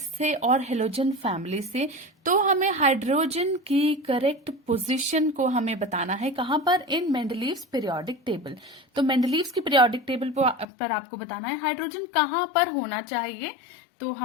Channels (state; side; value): drops out; right; at 10.7 s